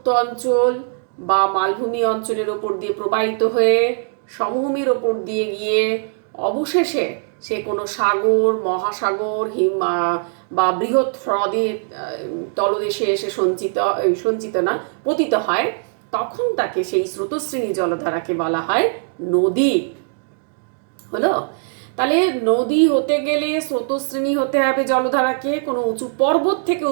অঞ্চল বা মালভূমি অঞ্চলের ওপর দিয়ে প্রবাহিত হয়ে সমভূমির ওপর দিয়ে গিয়ে অবশেষে সে কোনো সাগর, মহাসাগর, বা বৃহৎ হ্রদের তলদেশে এসে পতিত হয়, তখন তাকে সেই স্রোতশ্রেণী জলধারাকে বলা হয় নদী। হলো? তাহলে নদী হতে গেলে স্রোতশ্রেণী হতে হবে জলধারাকে, কোনো উঁচু পর্বত থেকে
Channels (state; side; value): silent; left; 56 dB below the other